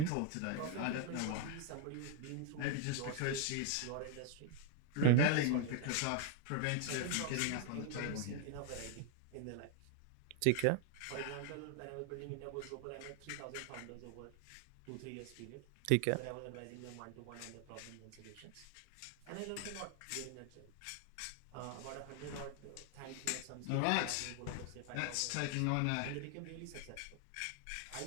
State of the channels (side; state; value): both; different; correlation 0.00